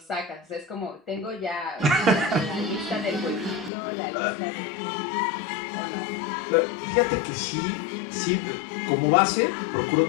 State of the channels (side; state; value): right; drops out; at 3.7 s